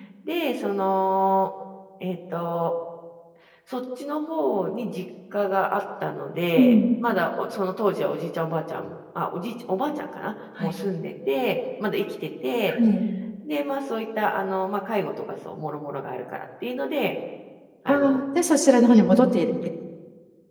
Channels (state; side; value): identical; both; correlation 1.00